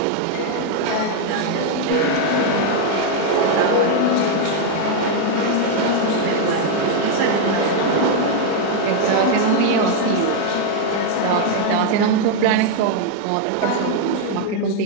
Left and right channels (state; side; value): different; both; correlation 0.01